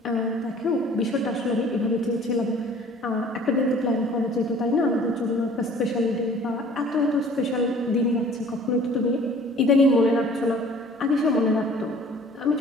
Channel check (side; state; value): both; normal; correlation 0.50